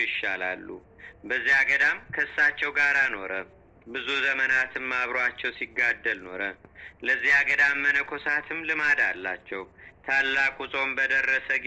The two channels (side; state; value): both; identical; correlation 1.00